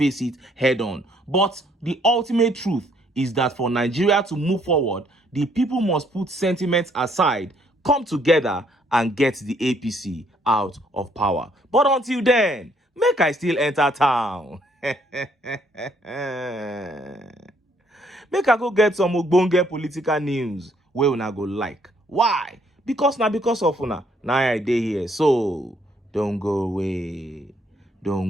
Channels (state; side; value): normal; both; correlation 0.67